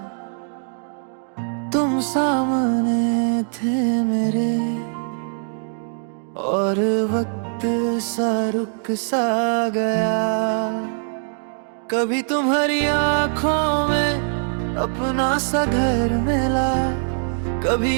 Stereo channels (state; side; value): silent; left; digital silence